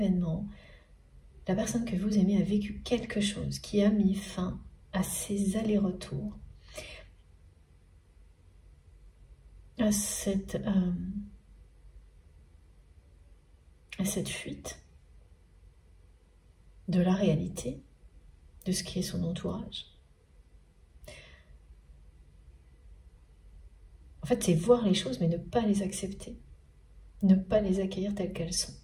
La personne que vous aimez a vécu quelque chose qui a mis fin à ses allers-retours, à cette fuite de la réalité, de ce qui est son entourage. En fait, c'est voir les choses, mais ne pas les accepter, ne pas les accueillir telles qu'elles sont.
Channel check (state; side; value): identical; both; correlation 1.00